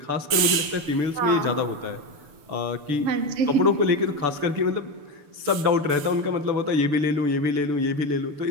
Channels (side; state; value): left; late; 6.8 ms